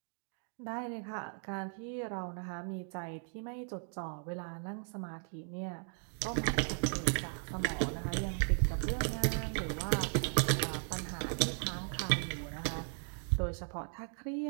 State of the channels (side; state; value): left; silent; 53 dB below the other